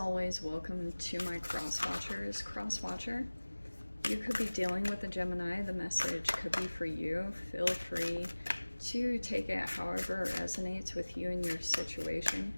welcome to my cross-watchers. Cross-watcher, you could be dealing with a Gemini. The message could be for you. Feel free to take it however it resonates with you and your situation.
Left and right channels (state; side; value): inverted; both; correlation -1.00